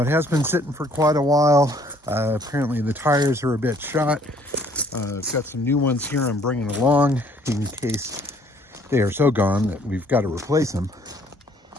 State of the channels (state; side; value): normal; both; correlation 0.61